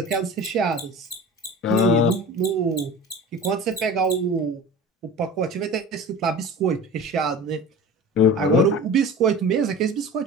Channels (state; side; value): normal; both; correlation 0.36